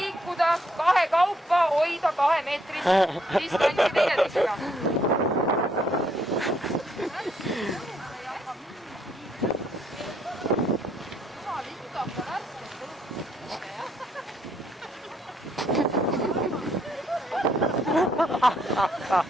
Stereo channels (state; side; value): normal; both; correlation 0.70